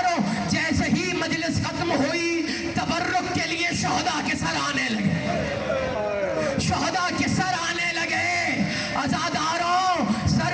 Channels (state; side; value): identical; both; correlation 1.00